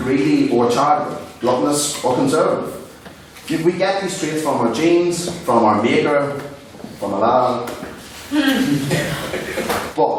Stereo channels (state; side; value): identical; both; correlation 1.00